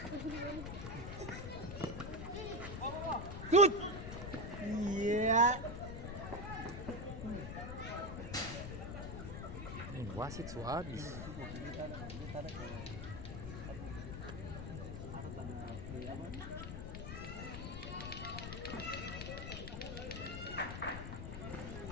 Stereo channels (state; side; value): noise; left; rumble, 6 dB below the sound